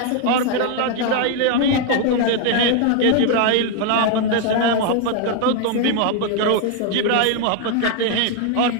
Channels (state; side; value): different; both; correlation 0.01